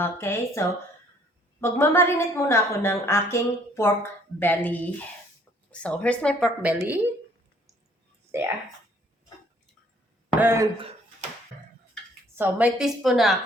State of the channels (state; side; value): normal; both; correlation 0.61